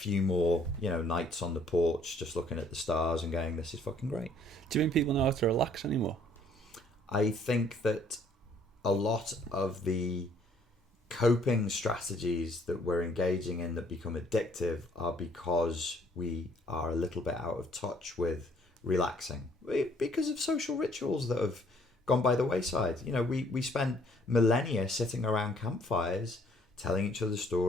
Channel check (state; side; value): normal; both; correlation 0.62